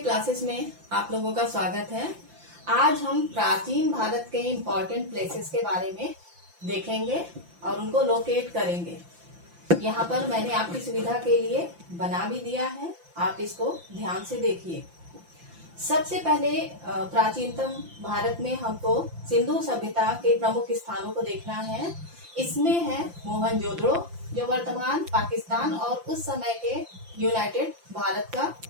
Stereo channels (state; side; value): late; left; 5.8 ms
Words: में आप लोगों का स्वागत है। आज हम प्राचीन भारत के इम्पोर्टेंट प्लेसेस के बारे में देखेंगे और उनको लोकेट करेंगे। यहाँ पर मैंने आपकी सुविधा के लिए बना भी दिया है, आप इसको ध्यान से देखिए। सबसे पहले प्राचीनतम भारत में हमको सिंधु सभ्यता के प्रमुख स्थानों को देखना है। इसमें है मोहनजोदड़ो, जो वर्तमान पाकिस्तान और उस समय के यूनाइटेड भारत का